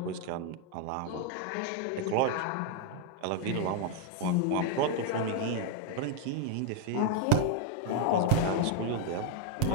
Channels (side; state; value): both; different; correlation 0.00